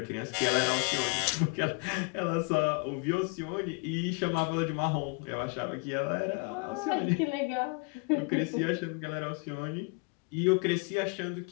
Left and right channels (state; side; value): quieter; right; 32.0 dB